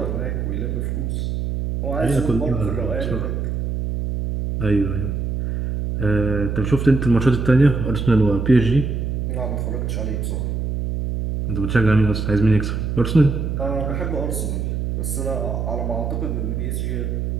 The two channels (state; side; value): noise; right; hum, 2 dB below the sound